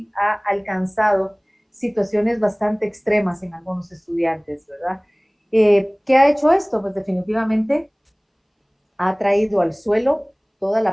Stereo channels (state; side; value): identical; both; correlation 1.00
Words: ha alcanzado situaciones bastante extremas en algunos estudiantes, ¿verdad? ¿Qué ha hecho esto? Pues definitivamente ha traído al suelo toda